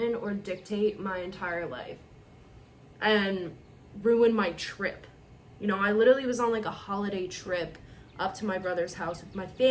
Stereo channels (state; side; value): identical; both; correlation 1.00